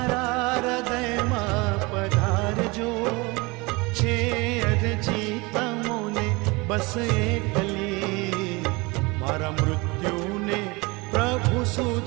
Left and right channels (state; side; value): quieter; left; 25.3 dB